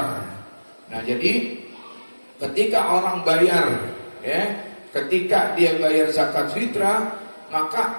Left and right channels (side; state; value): both; inverted; correlation -1.00